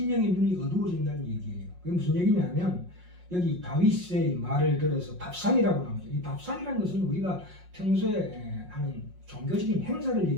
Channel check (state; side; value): late; left; 5.5 ms